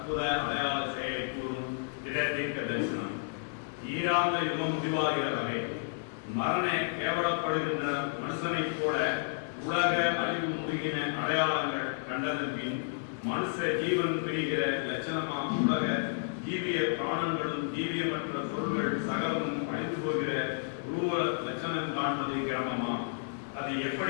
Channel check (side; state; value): right; silent; digital silence